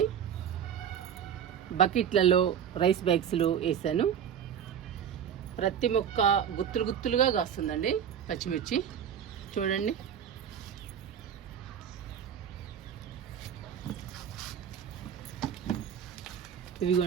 బకెట్లలో రైస్ బ్యాగ్స్లో వేసాను. ప్రతి మొక్క గుత్తులు గుత్తులుగా కాస్తుందండి పచ్చిమిర్చి. చూడండి,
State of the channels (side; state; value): left; quieter; 8.7 dB